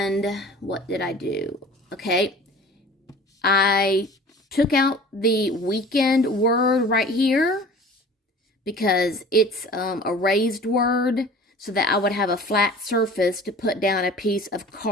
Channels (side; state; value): both; normal; correlation 0.43